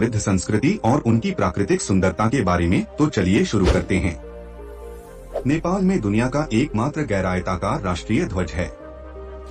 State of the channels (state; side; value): identical; both; correlation 1.00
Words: संस्कृति और उनकी प्राकृतिक सुंदरता के बारे में। तो चलिए शुरू करते हैं। नेपाल में दुनिया का एकमात्र गैर-आयताकार राष्ट्रीय ध्वज है।